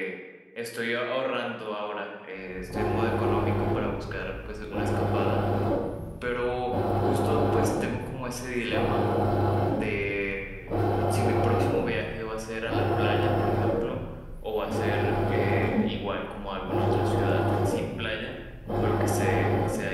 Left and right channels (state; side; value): identical; both; correlation 1.00